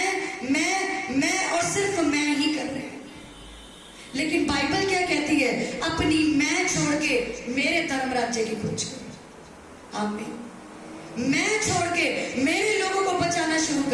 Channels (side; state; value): both; identical; correlation 1.00